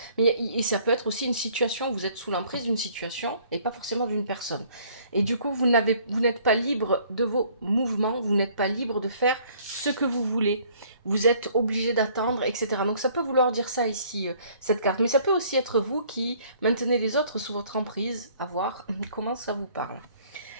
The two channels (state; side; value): inverted; both; correlation -0.59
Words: Mais et ça peut être aussi une situation où vous êtes sous l'emprise d'une situation et pas forcément d'une personne. Et du coup, vous n'êtes pas libre de vos mouvements, vous n'êtes pas libre de faire ce que vous voulez. Vous êtes obligé d'attendre, etc. Donc ça peut vouloir dire ça ici, cette carte. Mais ça peut aussi être vous qui maintenez les autres sous votre emprise, à voir comment ça vous parle.